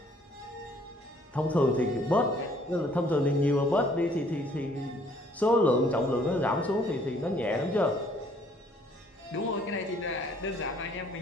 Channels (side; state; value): both; normal; correlation 0.61